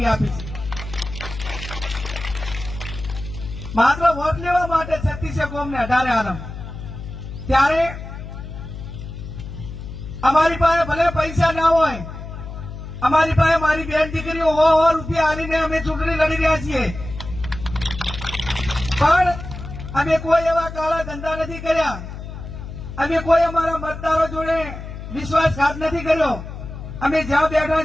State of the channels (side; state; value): left; noise; hum, 10 dB below the sound